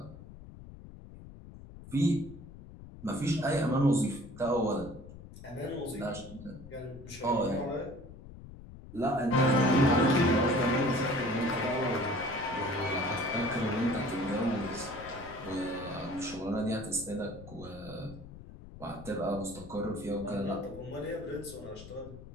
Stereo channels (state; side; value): noise; left; rumble, 16 dB below the sound